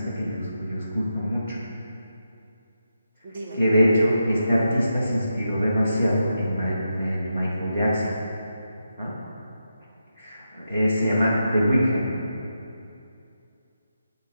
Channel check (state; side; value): inverted; both; correlation -0.86